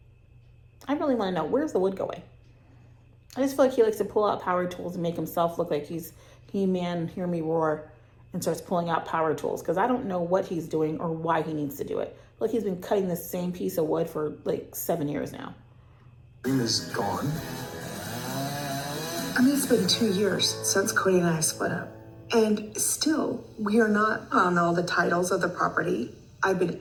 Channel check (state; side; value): identical; both; correlation 1.00